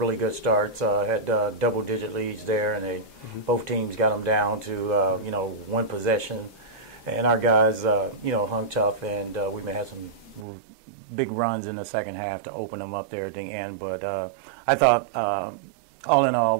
good starts. Had double-digit leads there, and both teams got them down to one possession. And our guys, hung tough, and we may have some big runs in the second half to open them up there at the end. But I thought, all in all,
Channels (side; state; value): left; drops out; at 10.5 s